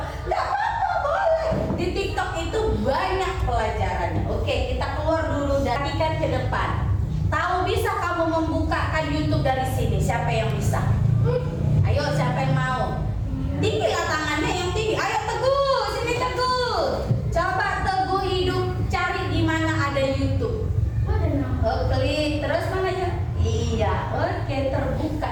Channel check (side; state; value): both; identical; correlation 1.00